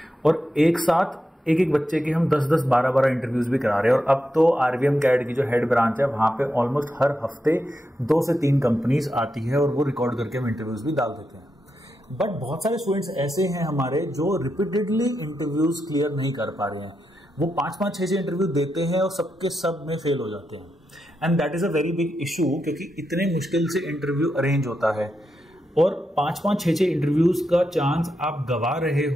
और एक साथ एक एक बच्चे के हम 10-10, 12-12 इंटरव्यूज भी करा रहे हैं। और अब तो RVM CAD की जो हेड ब्रांच है वहां पे ऑलमोस्ट हर हफ्ते 2 से 3 कंपनीज आती है और वो रिकॉर्ड करके हम इंटरव्यूज भी डाल देते हैं। बट बहुत सारे स्टूडेंट्स ऐसे हैं हमारे जो रिपीटेडली इंटरव्यूज क्लियर नहीं कर पा रहे हैं। वो 5-5, 6-6 इंटरव्यू देते हैं और सबके सब में फेल हो जाते हैं। And that is a very big issue, क्योंकि इतने मुश्किल से इंटरव्यू अरेंज होता है और 5-5, 6-6 इंटरव्यूज का चांस आप गवा रहे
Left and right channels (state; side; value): normal; both; correlation 0.85